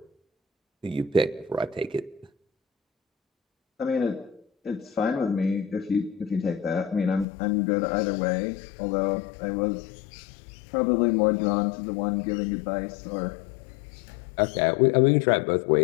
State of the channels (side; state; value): right; drops out; at 7.2 s